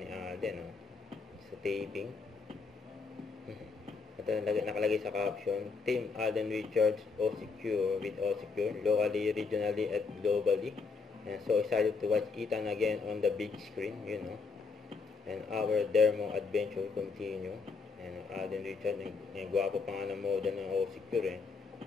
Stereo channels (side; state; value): right; quieter; 4.6 dB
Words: Alden, sa taping. Ito nakalagay sa caption, Team Alden Richards OCQ with OCQ, locally, regionally, at globally. And so excited to watch Ethan again on the big screen, And our Dermo adventure continue. And Alden Richards, yung gwapo pa nga ng moda ng OCQ